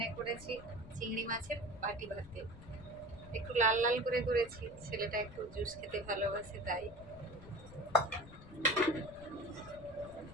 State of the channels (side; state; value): left; noise; rumble, 16 dB below the sound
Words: করেছি চিংড়ি মাছের বাটি ভাতে, একটু লাল লাল করে করেছি, ছেলেটা একটু জুস খেতে ভালোবাসে তাই।